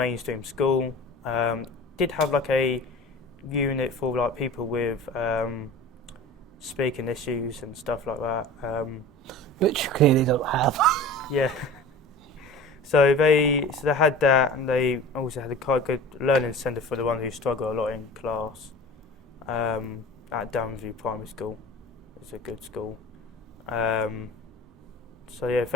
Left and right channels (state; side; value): normal; both; correlation 0.38